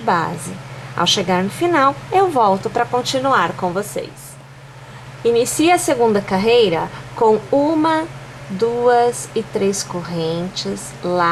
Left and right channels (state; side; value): identical; both; correlation 1.00